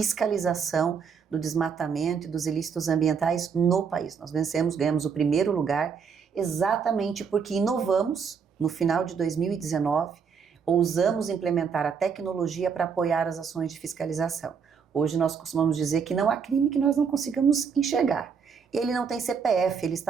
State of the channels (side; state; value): left; quieter; 6.3 dB